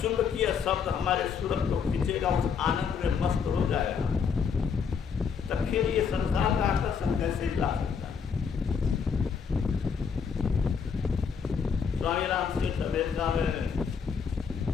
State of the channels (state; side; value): quieter; right; 6.4 dB